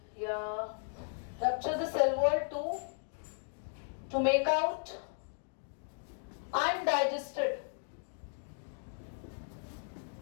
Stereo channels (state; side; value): silent; right; digital silence